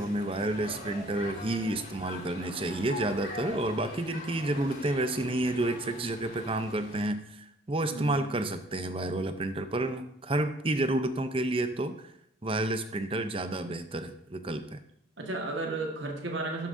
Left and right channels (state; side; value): normal; both; correlation 0.56